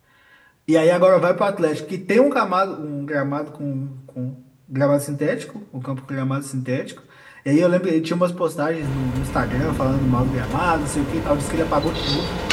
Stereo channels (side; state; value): both; identical; correlation 1.00